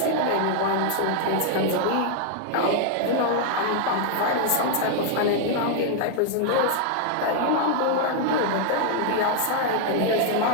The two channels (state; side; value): different; both; correlation 0.00